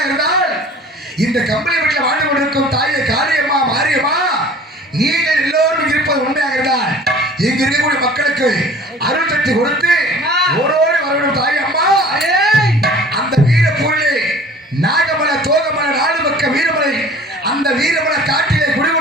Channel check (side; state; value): both; normal; correlation 0.46